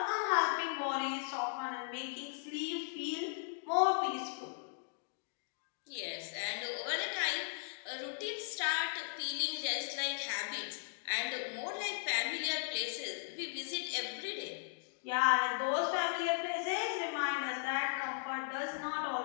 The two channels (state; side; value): silent; right; digital silence